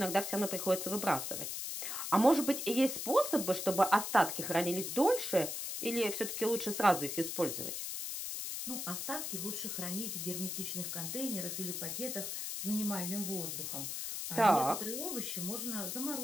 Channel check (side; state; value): left; noise; hiss, 4 dB below the sound